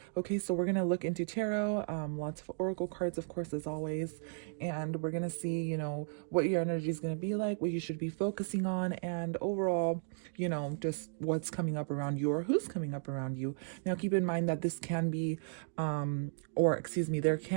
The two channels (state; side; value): silent; left; digital silence